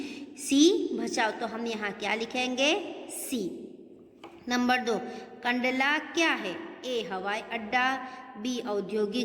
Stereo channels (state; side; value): identical; both; correlation 1.00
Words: भचाऊ। तो हम यहाँ क्या लिखेंगे? सी। नंबर 2, कंडला क्या है? ए हवाई अड्डा, बी